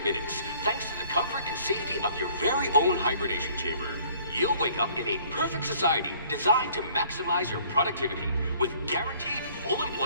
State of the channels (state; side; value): inverted; both; correlation -0.56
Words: minutes, thanks to the comfort and safety of your very own hibernation chamber. You'll wake up in a perfect society designed to maximize your productivity, with guaranteed full